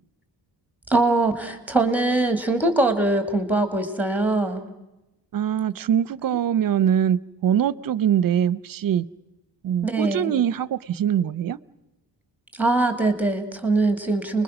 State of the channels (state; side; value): quieter; left; 4.6 dB